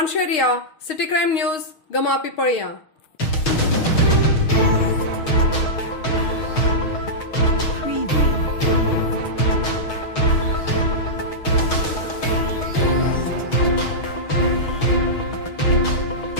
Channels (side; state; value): right; late; 6.3 ms